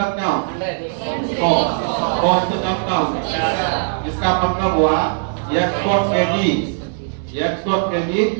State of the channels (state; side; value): silent; left; digital silence